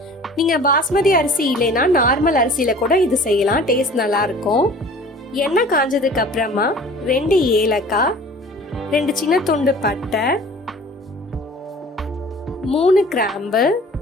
நீங்கள் பாஸ்மதி அரிசி இல்லைன்னா நார்மல் அரிசியில் கூட இது செய்யலாம், டேஸ்ட் நல்லாயிருக்கும். எண்ணெய் காஞ்சதுக்கு அப்புறமா 2 ஏலக்காய், 2 சின்ன துண்டு பட்டை, 3 கிராம்பு,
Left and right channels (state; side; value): normal; both; correlation 0.46